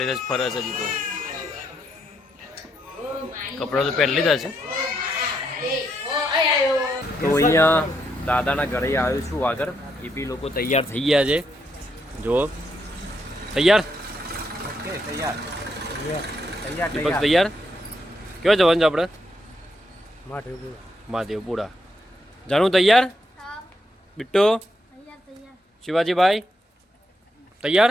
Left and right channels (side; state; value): both; normal; correlation 0.78